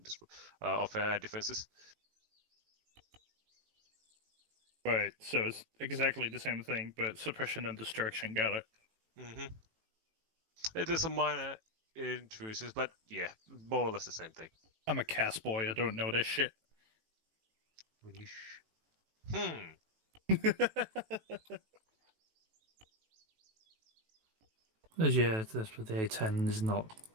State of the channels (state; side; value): late; left; 18 ms